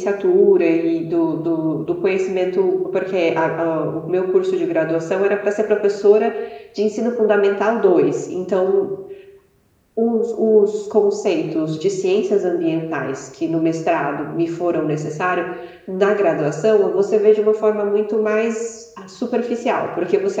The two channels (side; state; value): both; identical; correlation 1.00